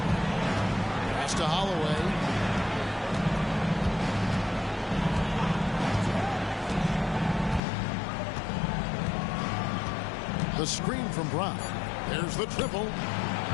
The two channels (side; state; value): right; drops out; at 7.6 s